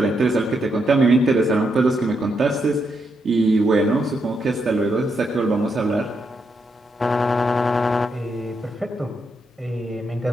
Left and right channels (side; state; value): both; normal; correlation 0.80